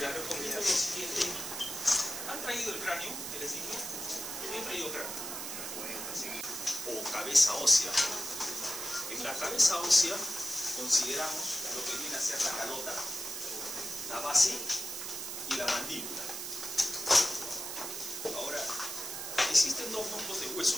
recomiendo lo siguiente. ¿Han traído el cráneo? ¿Qué les digo? ¿Han traído cráneo? O cabeza ósea. En la cabeza ósea consideramos lo que viene a ser la calota, la base y la mandíbula. Ahora, existen dos grupos de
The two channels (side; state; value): right; noise; hiss, 5 dB below the sound